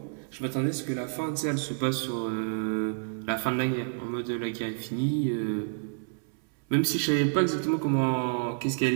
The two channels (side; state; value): left; silent; 59 dB below the other